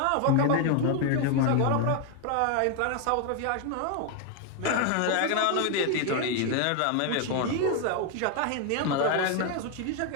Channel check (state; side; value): different; both; correlation 0.01